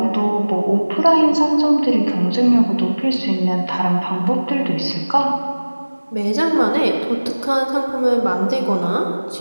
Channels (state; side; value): inverted; both; correlation -1.00